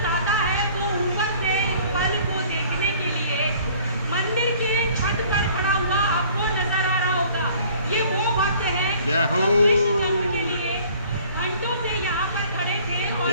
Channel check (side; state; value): both; inverted; correlation -0.53